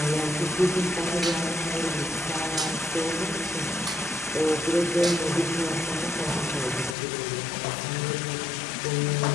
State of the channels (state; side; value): drops out; right; at 7.0 s